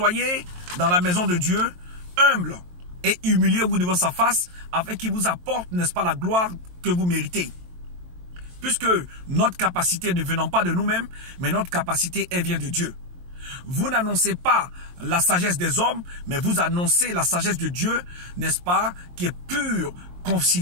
dans la maison de Dieu humble et humiliez-vous devant sa face afin qu'il vous apporte, n'est-ce pas, la gloire que vous méritez. Puisque notre capacité ne venant pas de nous-mêmes, mais notre capacité, elle vient de Dieu. Vous n'annoncez pas la sagesse des hommes, mais vous annoncez la sagesse de Dieu, n'est-ce pas, qui est pure,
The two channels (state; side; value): late; left; 23 ms